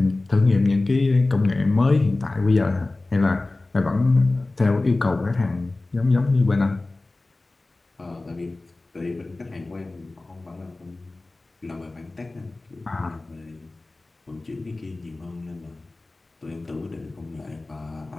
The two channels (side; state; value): right; quieter; 3.1 dB